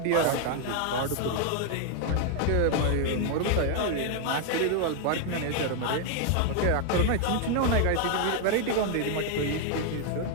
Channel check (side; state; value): both; different; correlation 0.00